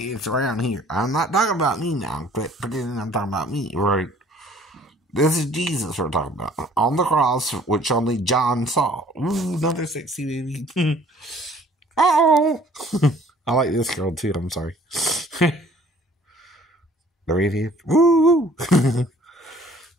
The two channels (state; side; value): normal; both; correlation 0.55